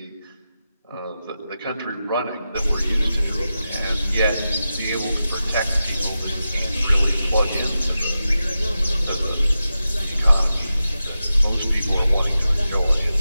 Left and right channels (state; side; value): inverted; both; correlation -0.91